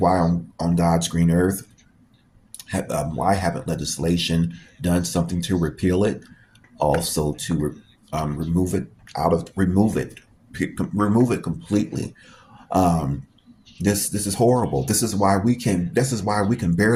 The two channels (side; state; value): both; identical; correlation 1.00